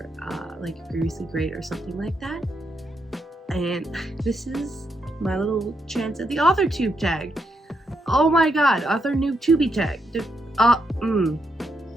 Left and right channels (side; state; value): both; normal; correlation 0.80